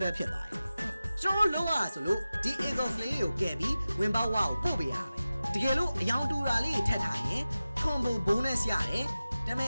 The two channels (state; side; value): inverted; both; correlation -0.95